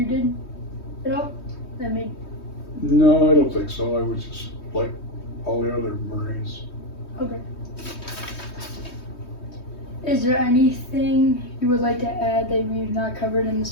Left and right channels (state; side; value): late; right; 3.2 ms